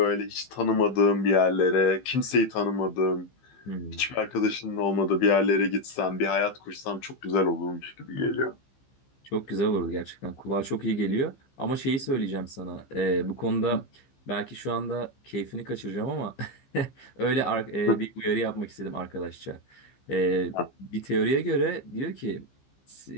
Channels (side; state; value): right; late; 15 ms